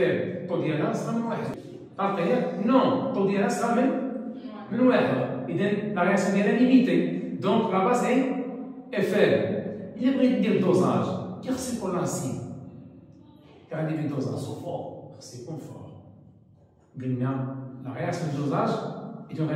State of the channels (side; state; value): both; identical; correlation 1.00